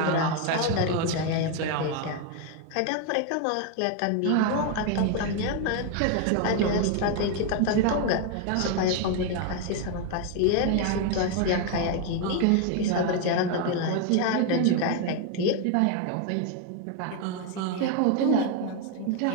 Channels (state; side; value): different; both; correlation 0.01